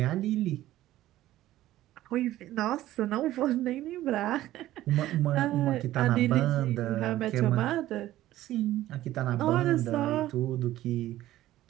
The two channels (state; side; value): quieter; left; 14.7 dB